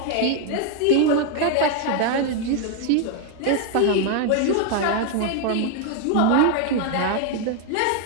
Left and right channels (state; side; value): different; both; correlation 0.00